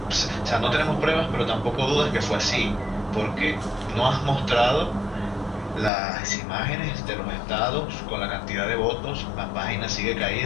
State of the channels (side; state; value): right; drops out; at 5.9 s